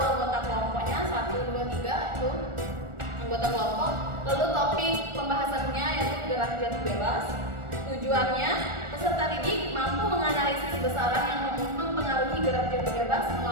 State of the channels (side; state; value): left; late; 1.4 ms